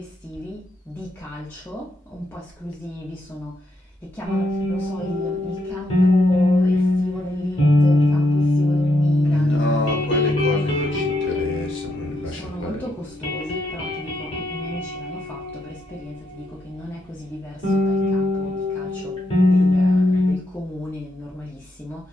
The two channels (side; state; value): both; normal; correlation 0.79